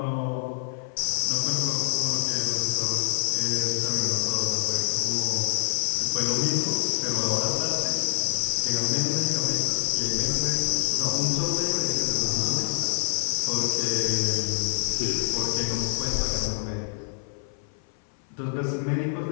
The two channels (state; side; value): silent; right; 56 dB below the other